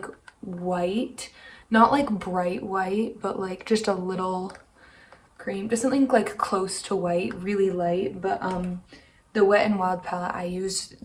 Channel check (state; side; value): identical; both; correlation 1.00